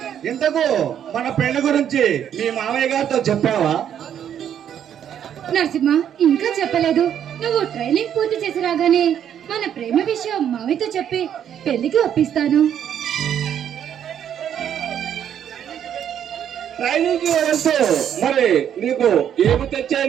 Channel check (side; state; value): left; quieter; 9.4 dB